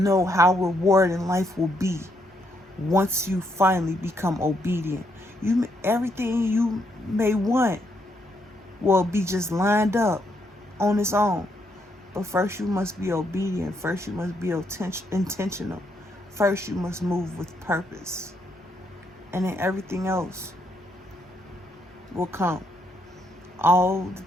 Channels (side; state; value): both; normal; correlation 0.75